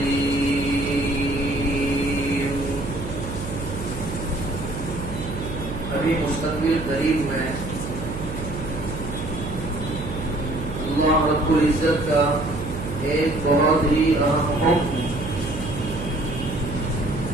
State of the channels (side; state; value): right; noise; hum, 8 dB below the sound